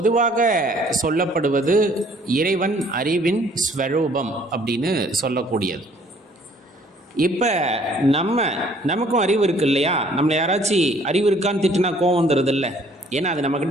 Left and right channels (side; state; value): both; normal; correlation 0.59